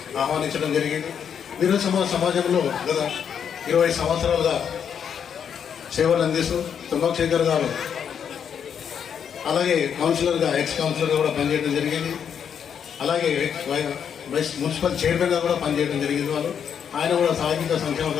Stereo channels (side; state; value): right; quieter; 7.9 dB